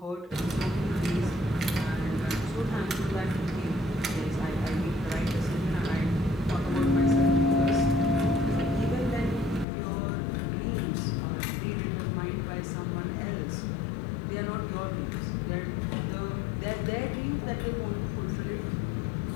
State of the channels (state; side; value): drops out; right; at 9.7 s